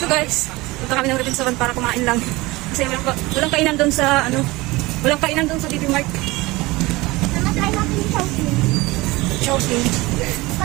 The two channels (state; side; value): quieter; left; 21.5 dB